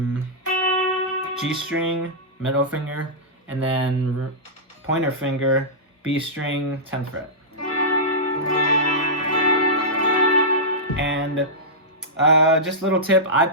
G string, middle finger, and then pointer finger, B string, 10th fret. And just a little tip, I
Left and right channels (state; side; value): normal; both; correlation -0.13